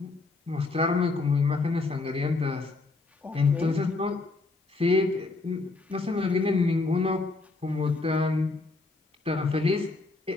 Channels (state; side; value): quieter; right; 3.6 dB